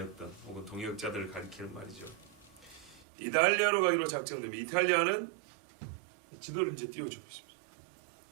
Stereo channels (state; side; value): drops out; left; at 3.1 s